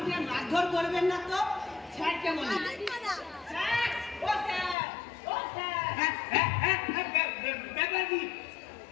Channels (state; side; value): drops out; right; at 4.8 s